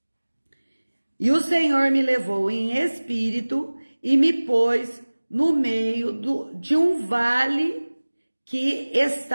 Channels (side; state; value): both; inverted; correlation -1.00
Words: E o Senhor me levou em espírito e me pôs no meio de um vale que